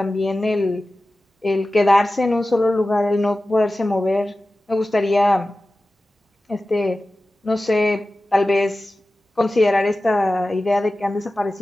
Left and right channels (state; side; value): normal; both; correlation 0.95